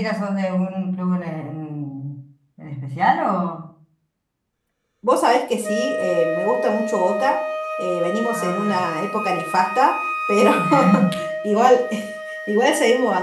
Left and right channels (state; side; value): identical; both; correlation 1.00